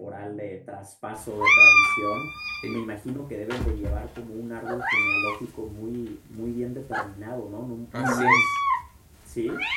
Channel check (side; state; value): both; identical; correlation 1.00